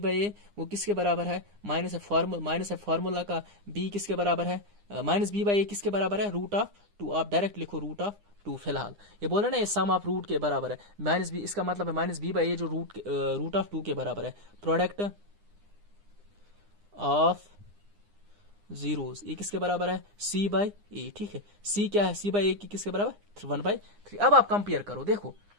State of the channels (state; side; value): late; left; 9.8 ms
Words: ए, वो किसके बराबर है, माइनस है फार्मूला का, b किसके बराबर है, -b बाई ए किसके बराबर है, √2, आप डायरेक्ट लिखो √2। फिलहाल ये बोल रहे ना ये सम ऑफ रूट के बराबर है, -b, इसका मतलब है -b बाई ए जो √2 के बराबर है, प्रोडक्ट ऑफ जीरोस ये किसके बराबर है, c बाई ए, ठीक है, c क्या है, c बाई ए की किसके बराबर, 1/3। अब आप कंपेयर करो, देखो